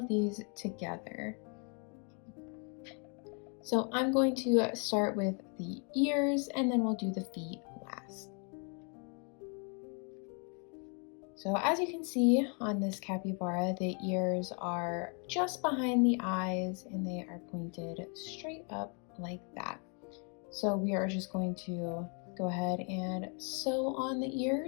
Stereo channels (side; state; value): right; quieter; 37.9 dB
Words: these together. So I'm going to start with the ears and then we'll do the feet last. So as you can see on this capybara, the ears are just behind the eyes and they are pointed straight up like that. So we are just going to go ahead and sew on the